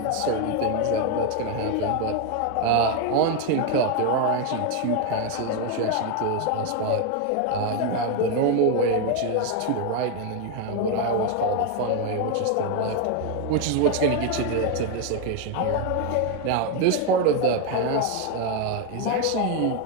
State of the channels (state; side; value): different; both; correlation 0.01